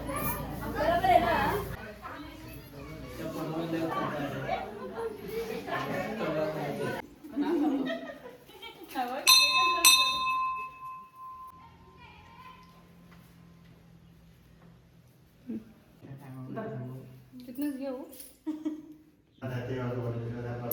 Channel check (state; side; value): identical; both; correlation 1.00